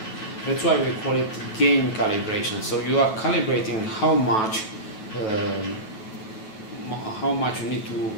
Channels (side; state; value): right; late; 9.2 ms